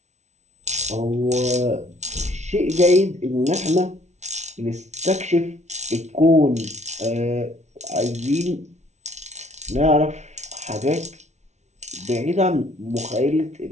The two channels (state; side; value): late; left; 0.32 ms